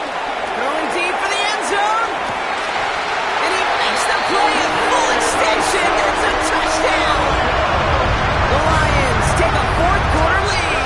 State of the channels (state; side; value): identical; both; correlation 1.00